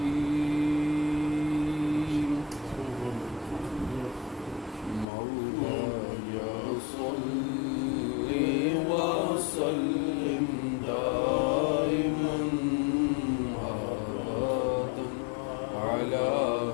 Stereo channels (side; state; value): right; drops out; at 5.1 s